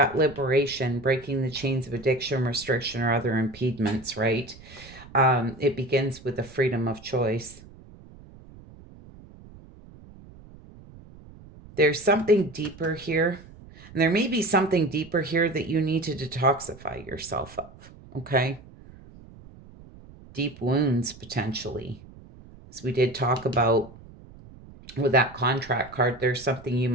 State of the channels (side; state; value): right; noise; rumble, 20 dB below the sound